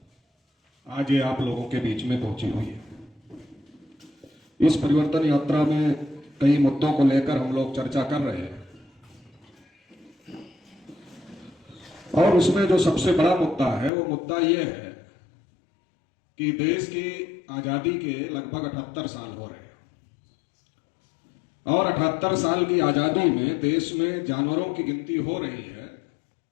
आज ये आप लोगों के बीच में पहुंची हुई है। इस परिवर्तन यात्रा में कई मुद्दों को लेकर हम लोग चर्चा कर रहे हैं और उसमें जो सबसे बड़ा मुद्दा है वो मुद्दा ये है कि देश की आजादी के लगभग 78 साल हो रहे हैं और 78 साल की आजादी में देश में जानवरों की गिनती हो रही है,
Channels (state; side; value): drops out; right; at 13.9 s